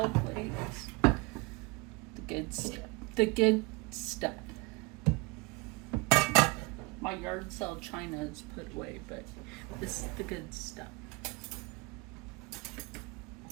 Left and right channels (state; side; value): quieter; left; 28.0 dB